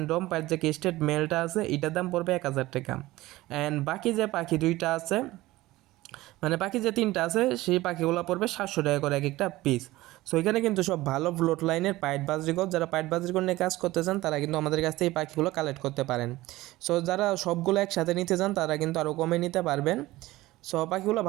ডম পাইট যে কেস্টেড মেলটা আছে এটার দাম পড়বে 1000 টাকা। অ্যান্ড বাকি যে পাখি দুইটা আছে, মানে বাকি যে তিনটা আছে সেই পাখিগুলো পড়বে 700 টাকা করে এক একটা পিস। সো এখানে কিন্তু সব ভালো ব্লড লাইনের পাইট বাজরিকর, যারা পাইট বাজরিকর নিয়ে কাজ করতে চান তারা কিন্তু আমাদের কাছ থেকে এই পাখিগুলো কালেক্ট করতে পারেন। সো যারা সবগুলো একসাথে নিতে চান তারা কিন্তু আরও কমে নিতে পারবেন। সো পাখিগুলো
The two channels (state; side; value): quieter; left; 18.0 dB